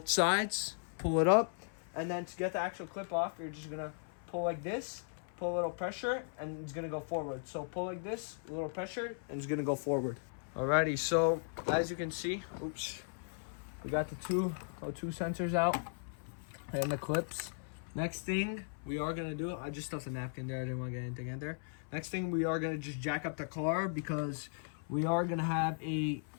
sides. Pull it up, and then to get the actual clip off, you're just gonna pull like this. Pull a little pressure, and it's gonna go forward. So pull like this, a little pressure, and it's gonna go forward. Alrighty, so as you can see, we got the two O2 sensors out and the clips. Next thing we are gonna do, I just stuffed a napkin there, I didn't want to get anything in there. Next thing, we are gonna just jack up the car because we are gonna have a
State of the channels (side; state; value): right; silent; 53 dB below the other